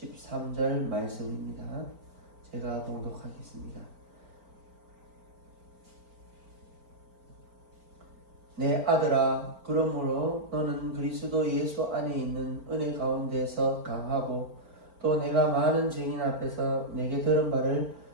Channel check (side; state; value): left; late; 4.4 ms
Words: 말씀입니다. 제가 봉독하겠습니다. 내 아들아, 그러므로 너는 그리스도 예수 안에 있는 은혜 가운데서 강하고 또 내가 많은 증인 앞에서 내게 들은 바를